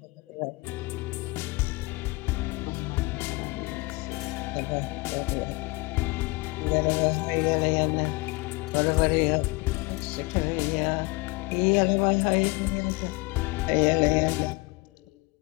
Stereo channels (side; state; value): right; quieter; 24.8 dB